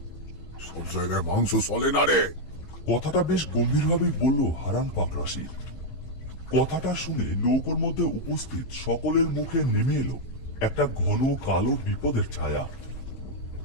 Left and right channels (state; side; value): late; right; 15 ms